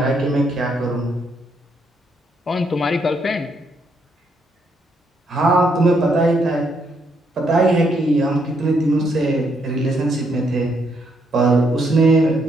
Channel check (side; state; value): both; normal; correlation 0.74